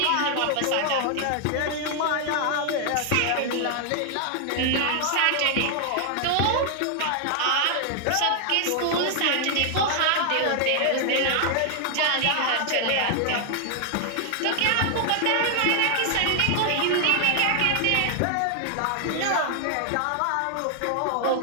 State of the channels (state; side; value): different; both; correlation 0.00